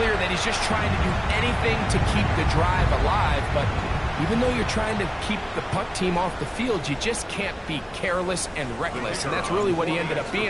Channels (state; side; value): identical; both; correlation 1.00